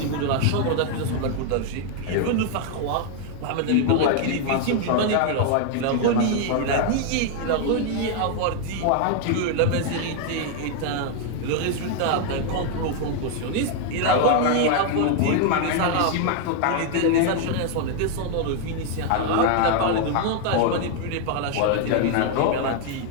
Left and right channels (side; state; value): both; different; correlation 0.00